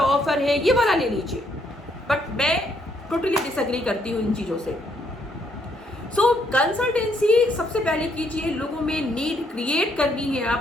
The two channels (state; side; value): normal; both; correlation 0.71